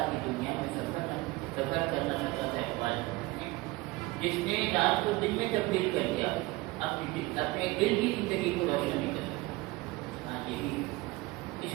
کی دنیا میں سفر کرنا چاہتا تھا اقبال، جس نے رات کو دن میں تبدیل کر دیا، اپنے دل کی زندگی کو روشن نہیں کر سکتا۔ ہاں یہی اس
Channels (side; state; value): left; quieter; 21.2 dB